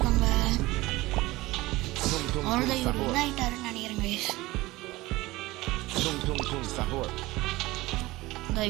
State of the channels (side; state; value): left; quieter; 19.5 dB